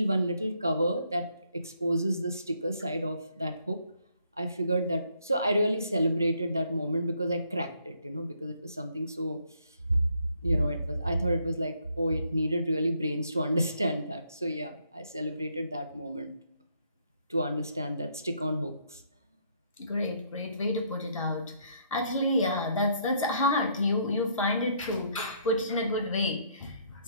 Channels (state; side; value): inverted; both; correlation -0.69